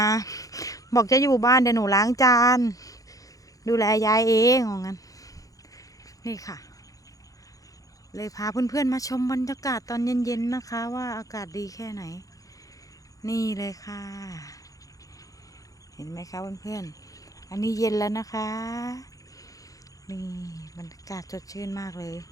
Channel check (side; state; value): right; late; 0.17 ms